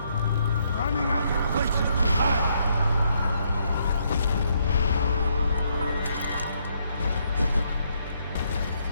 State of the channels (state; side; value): inverted; both; correlation -0.74